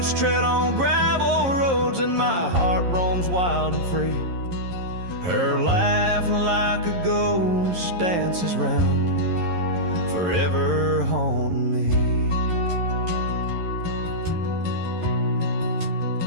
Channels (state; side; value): late; left; 11 ms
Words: tread on gravel roads and my heart roams wild and free, her laugh like a ghost dances round, forever haunting me.